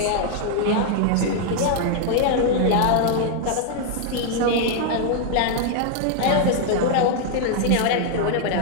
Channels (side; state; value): both; different; correlation 0.00